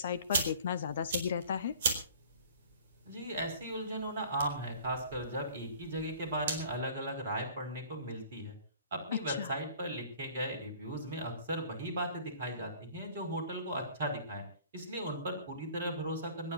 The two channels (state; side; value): inverted; both; correlation -0.49